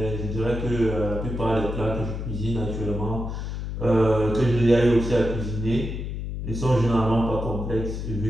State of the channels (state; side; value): noise; left; hum, 5 dB below the sound